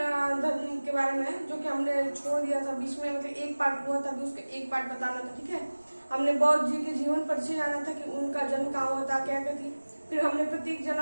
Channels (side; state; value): both; inverted; correlation -1.00